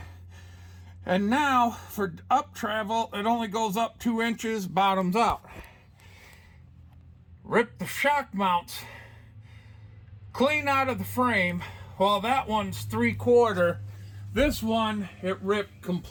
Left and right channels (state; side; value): identical; both; correlation 1.00